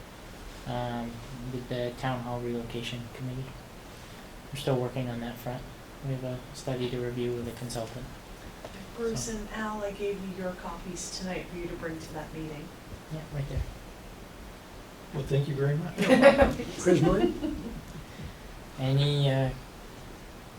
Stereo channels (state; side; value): identical; both; correlation 1.00